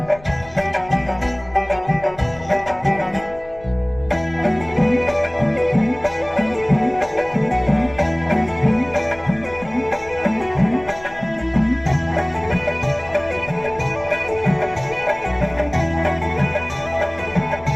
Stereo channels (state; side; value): noise; left; rumble, 20 dB below the sound